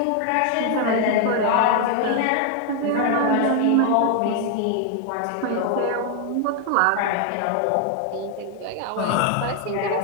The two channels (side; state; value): both; different; correlation 0.00